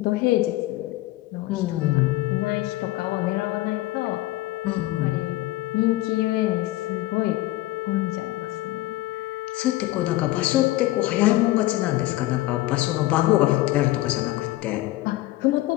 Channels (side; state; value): right; quieter; 17.3 dB